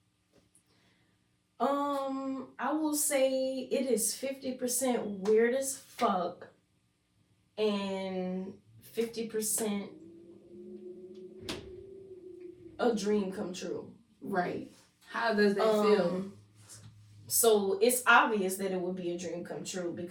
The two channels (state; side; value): identical; both; correlation 1.00